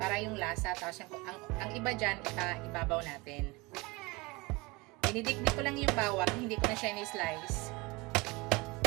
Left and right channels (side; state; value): left; quieter; 24.3 dB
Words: yung lasa, tapos ang iba dyan, ibabaw natin. Dinidikdik ko lang yung bawang, hindi ko na siya ni-slice.